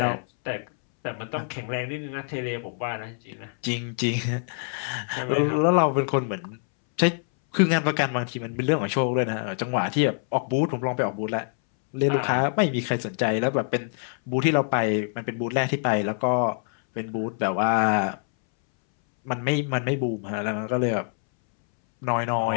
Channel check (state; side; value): silent; right; 61 dB below the other